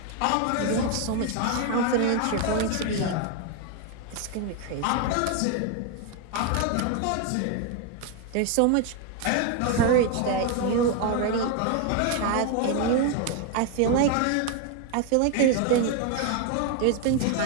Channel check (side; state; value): both; different; correlation 0.01